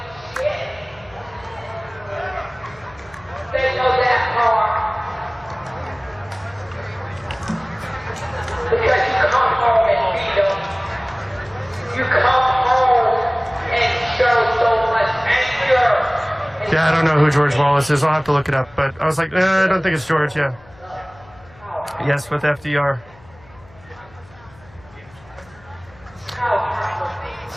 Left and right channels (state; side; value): noise; left; hum, 25 dB below the sound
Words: Yeah, I don't know who George Wallace is. I'll have to look it up. But I was like, I don't think it's George. Yeah. Yes, with FDR.